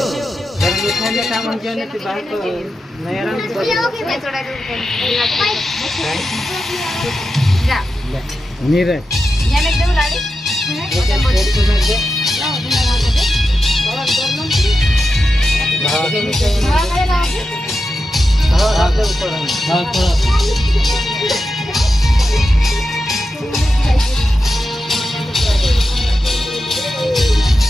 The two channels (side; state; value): both; normal; correlation 0.90